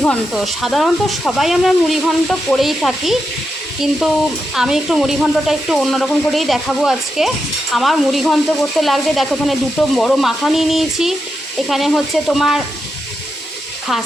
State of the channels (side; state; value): both; normal; correlation 0.86